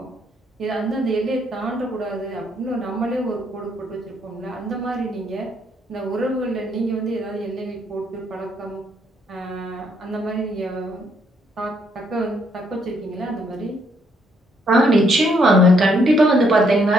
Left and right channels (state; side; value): normal; both; correlation 0.71